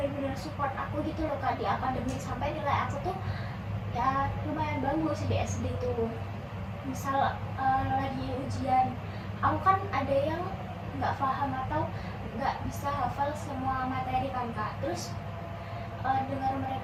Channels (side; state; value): both; identical; correlation 1.00